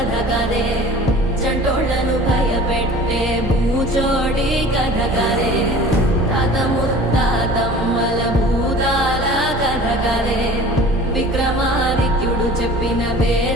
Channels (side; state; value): both; normal; correlation 0.44